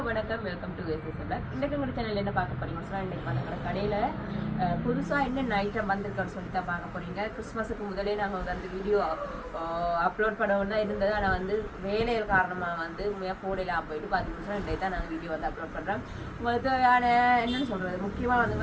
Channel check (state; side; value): identical; both; correlation 1.00